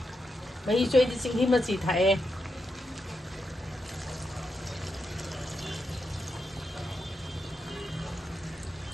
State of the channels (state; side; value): normal; both; correlation 0.85